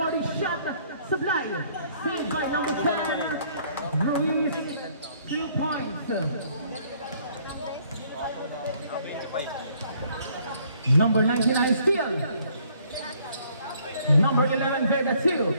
shot. Supply. Saved by number 10. Ruiz. 3 points. Number 99 steal. Number 11 Vega 2.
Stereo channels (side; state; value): both; inverted; correlation -0.63